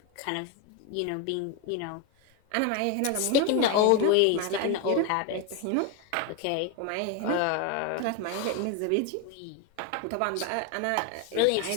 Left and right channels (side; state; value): both; different; correlation 0.02